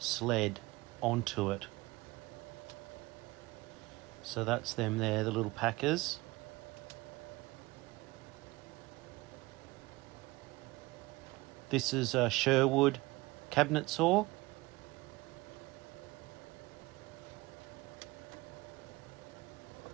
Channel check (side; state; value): left; quieter; 21.5 dB